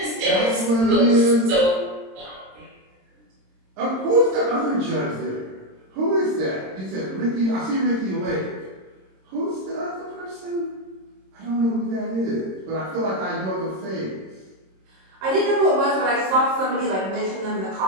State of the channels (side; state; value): left; late; 26 ms